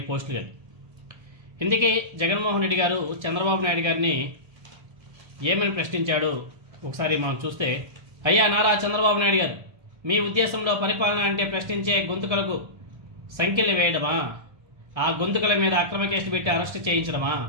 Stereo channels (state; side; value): late; left; 1.3 ms